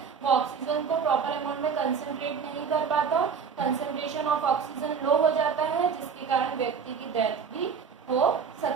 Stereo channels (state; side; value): quieter; left; 6.3 dB